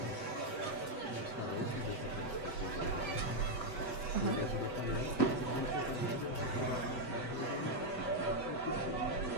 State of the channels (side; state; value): right; late; 8.0 ms